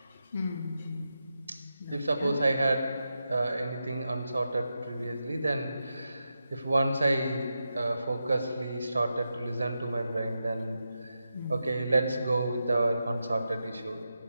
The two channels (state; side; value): inverted; both; correlation -0.88